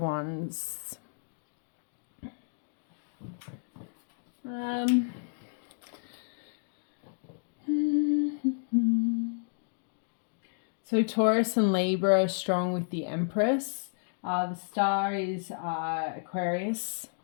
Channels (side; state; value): right; silent; digital silence